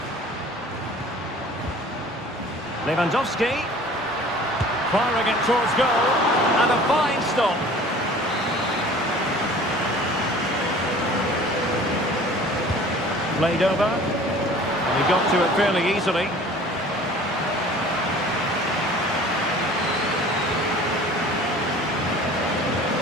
Lewandowski. Firing it towards goal. And a fine stop. Played over. And he got to it fairly easily.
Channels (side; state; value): both; normal; correlation 0.47